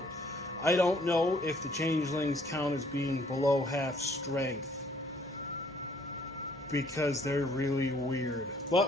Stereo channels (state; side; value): normal; both; correlation 0.62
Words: know if the changelings count as being below half strength, because they're really weird.